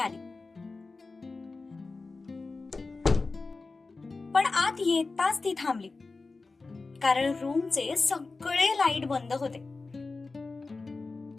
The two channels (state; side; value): quieter; right; 3.8 dB